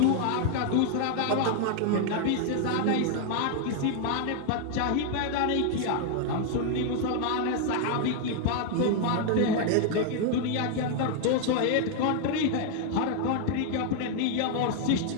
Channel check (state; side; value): different; both; correlation 0.00